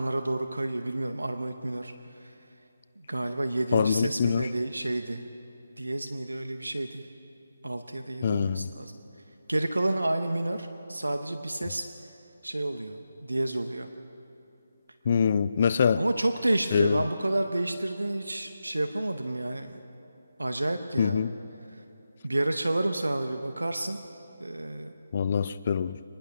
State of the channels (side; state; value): both; inverted; correlation -0.89